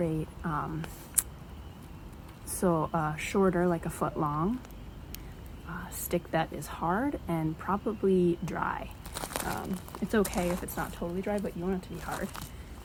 Shorter, like a foot long, stick that is hard and probably dry. It's okay if it's not totally dry, but you want it to be hard.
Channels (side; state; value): both; identical; correlation 1.00